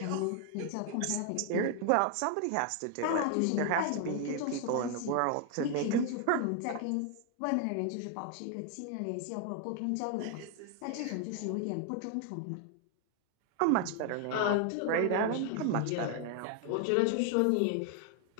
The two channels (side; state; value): both; different; correlation 0.00